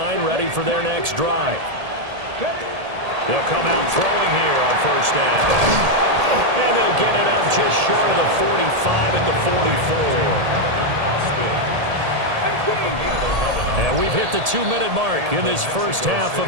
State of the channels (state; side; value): late; left; 1.8 ms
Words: ready for their next drive. They'll come out throwing here on 1st down. And they'll get it up just short of the 45 at the 44. And we've hit the 2-minute mark in this first half